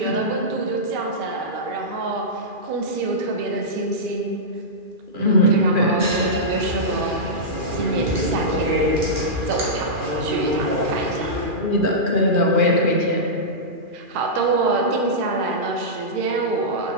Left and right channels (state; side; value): late; left; 2.4 ms